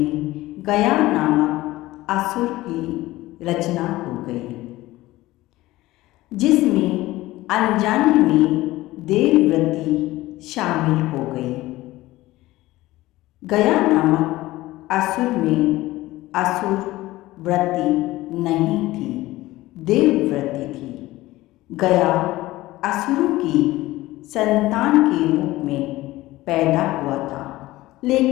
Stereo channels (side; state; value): right; quieter; 17.7 dB